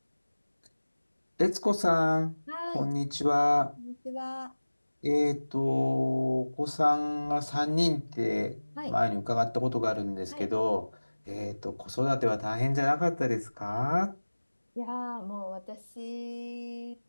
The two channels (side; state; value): both; inverted; correlation -1.00